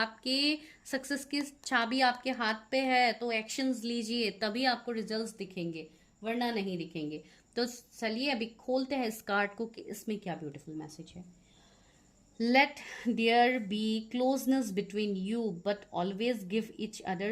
सक्सेस की चाबी आपके हाथ पे है, तो एक्शंस लीजिए, तभी आपको रिजल्ट्स दिखेंगे, वरना नहीं दिखेंगे। तो चलिए अभी खोलते हैं इस कार्ड को कि इसमें क्या ब्यूटीफुल मैसेज है। Let there be closeness between you, but always give each other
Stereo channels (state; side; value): identical; both; correlation 1.00